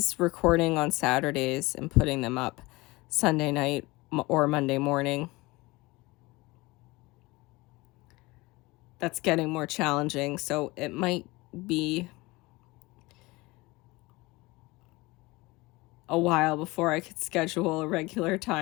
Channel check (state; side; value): quieter; right; 22.2 dB